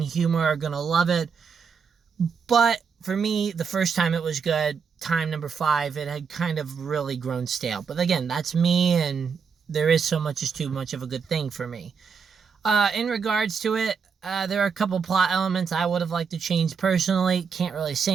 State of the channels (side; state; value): left; quieter; 6.0 dB